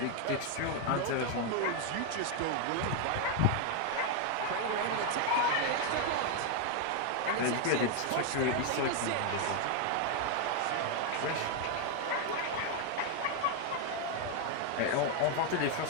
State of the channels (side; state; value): both; different; correlation 0.01